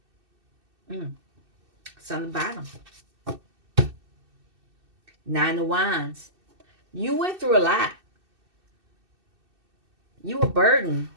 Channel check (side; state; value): left; late; 2.6 ms